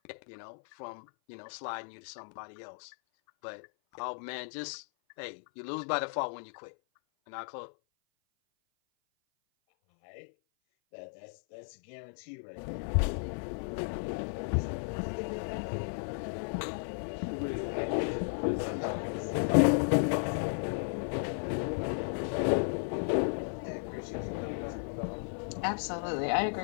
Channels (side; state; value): right; silent; 55 dB below the other